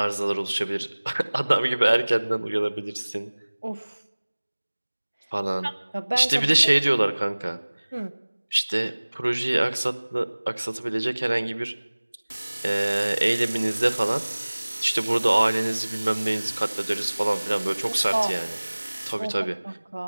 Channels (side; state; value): both; inverted; correlation -1.00